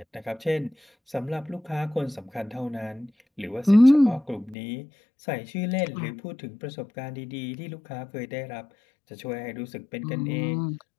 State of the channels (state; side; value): drops out; right; at 4.5 s